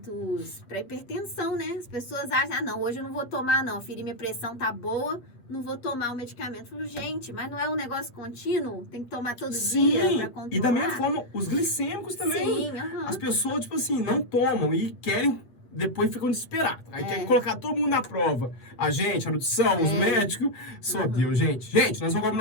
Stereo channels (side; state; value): right; late; 8.3 ms